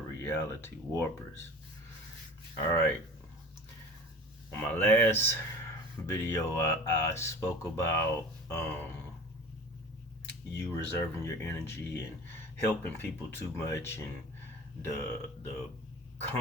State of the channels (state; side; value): normal; both; correlation 0.39